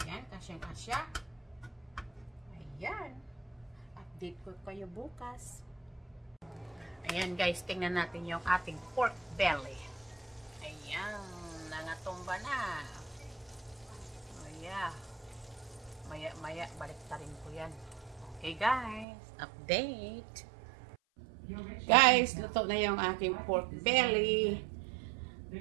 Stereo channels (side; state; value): left; drops out; at 19.1 s